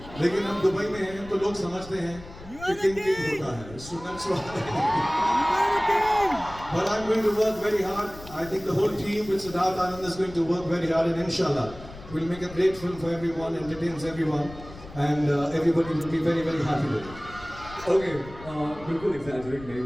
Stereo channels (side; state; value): left; noise; rumble, 16 dB below the sound